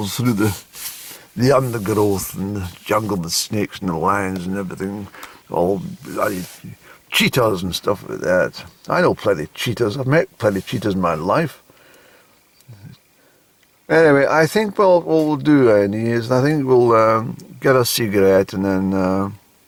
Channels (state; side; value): identical; both; correlation 1.00